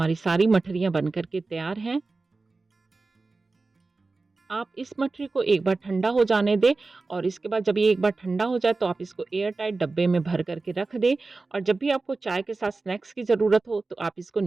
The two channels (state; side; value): quieter; left; 3.7 dB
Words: सारी मठरियाँ बन कर के तैयार हैं। आप इस मठरी को एक बार ठंडा हो जाने दें और इसके बाद जब ये एक बार ठंडा हो जाए तो आप इसको एयर टाइट डब्बे में भर करके रख दें और जब भी आपको चाय के साथ स्नैक्स की ज़रूरत हो तो आप इसको